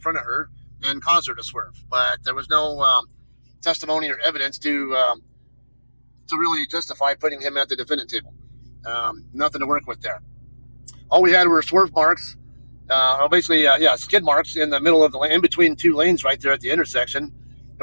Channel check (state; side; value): inverted; both; correlation -1.00